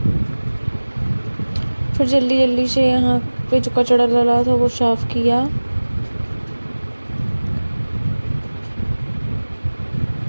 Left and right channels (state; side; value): inverted; both; correlation -1.00